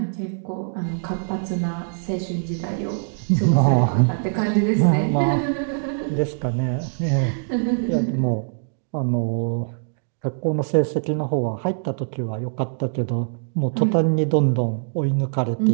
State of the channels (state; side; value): silent; left; digital silence